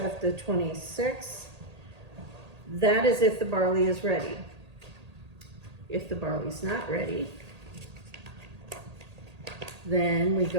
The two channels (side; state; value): left; late; 1.8 ms